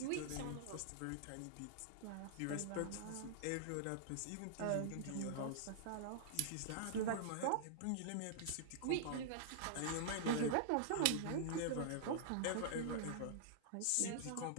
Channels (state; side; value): different; both; correlation -0.01